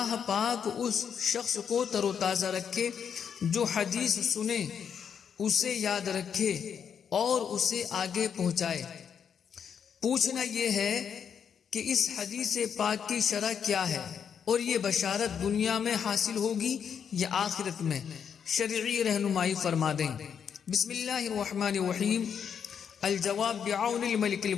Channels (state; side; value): quieter; right; 7.5 dB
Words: پاک اس شخص کو تر و تازہ رکھے جو حدیث سنے، اسے یاد رکھے اور اسے آگے پہنچائے۔ پوچھنا یہ ہے کہ اس حدیث پاک کی شرح کیا ہے اور یہ بشارت دنیا میں حاصل ہوگی یا آخرت میں؟ شرعی رہنمائی فرما دیں۔ بسم اللہ الرحمن الرحیم۔ الجواب بعون الملک